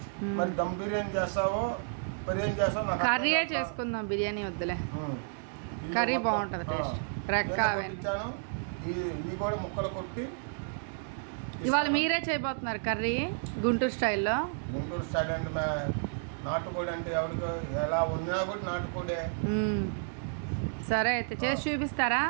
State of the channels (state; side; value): silent; left; digital silence